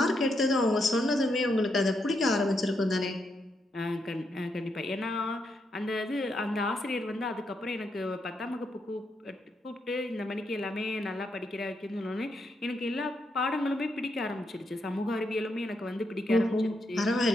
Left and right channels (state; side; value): normal; both; correlation 0.80